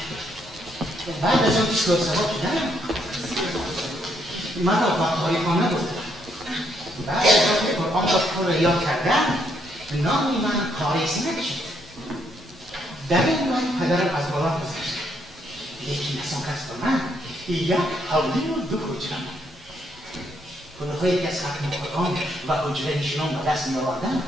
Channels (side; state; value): both; normal; correlation 0.73